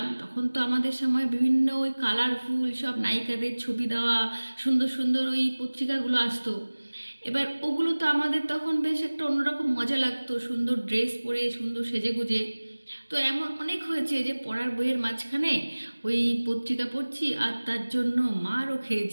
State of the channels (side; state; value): both; inverted; correlation -1.00